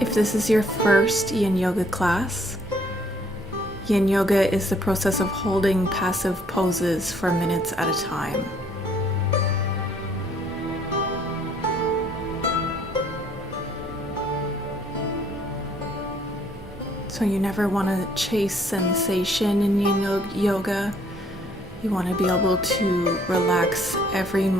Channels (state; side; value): normal; both; correlation 0.63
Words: this is your first Yin Yoga class, Yin Yoga is the process of holding passive poses for minutes at a time. So you never want to chase sensation in Yin Yoga. You want to be able to relax every